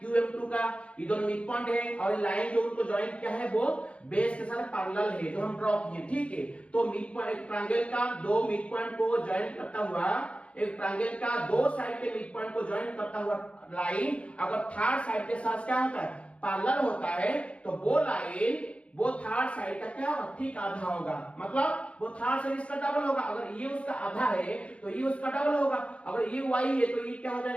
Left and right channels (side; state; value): right; late; 0.061 ms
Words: QM2 का। ये दोनों मिड पॉइंट है और लाइन जो उनको ज्वाइन किया है वो बेस के साथ पैरेलल है जो हम ड्रॉ किए, ठीक है। तो मिड पॉइंट ट्रायंगल का दो मिड पॉइंट को ज्वाइन करता हुआ, एक ट्रायंगल का दो साइड के मिड पॉइंट को ज्वाइन करता हुआ लाइन अगर थर्ड साइड के साथ क्या होता है, पैरेलल होता है, तो वो लाइन वो थर्ड साइड का क्या होगा, ठीक आधा होगा, मतलब वो थर्ड साइड इसका डबल होगा। अगर ये उसका आधा है तो ये उसका डबल होगा। अगर ये y है तो ये क्या हो